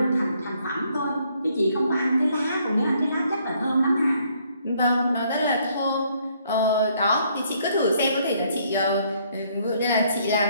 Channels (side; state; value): both; inverted; correlation -0.67